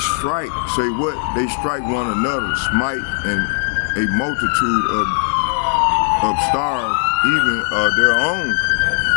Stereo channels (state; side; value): silent; right; 67 dB below the other